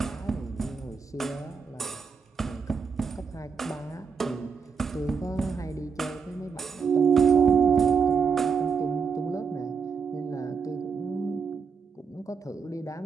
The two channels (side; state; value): left; quieter; 5.8 dB